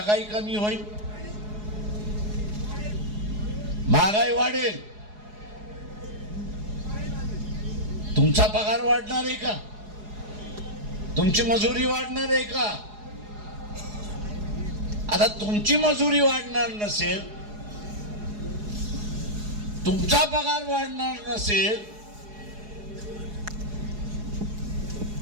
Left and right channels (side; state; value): left; late; 4.8 ms